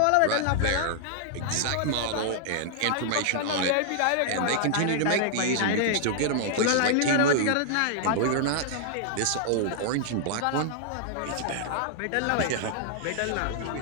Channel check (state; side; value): different; both; correlation -0.01